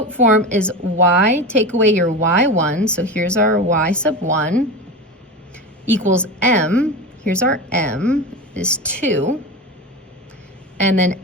form is y, take away your y1, so here's our y sub 1, equals m, here's our m, is 2, and then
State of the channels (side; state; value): both; normal; correlation 0.25